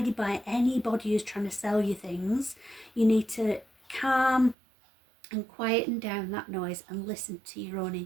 by anybody who's trying to sell you things. You need to calm and quieten down that noise and listen to your own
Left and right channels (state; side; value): drops out; left; at 4.5 s